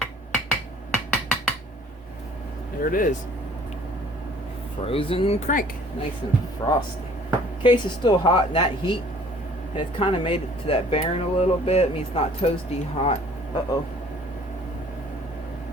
There it is. Frozen crank. Nice and frosty. Case is still hot, and that heat has kind of made it to that bearing a little bit. I mean, it's not toasty hot. Uh-oh.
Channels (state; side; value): normal; both; correlation 0.54